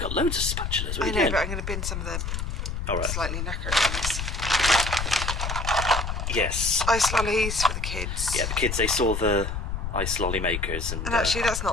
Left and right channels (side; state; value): left; noise; rumble, 3 dB below the sound